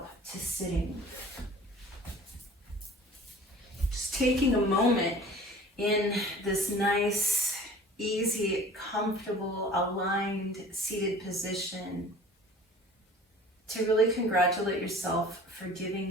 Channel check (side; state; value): both; normal; correlation 0.45